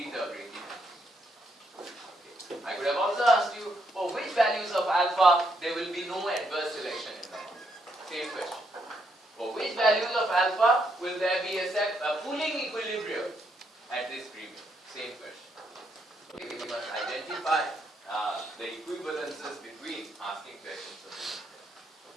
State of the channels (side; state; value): both; normal; correlation 0.76